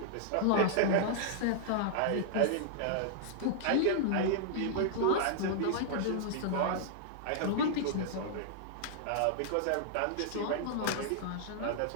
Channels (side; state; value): both; different; correlation -0.01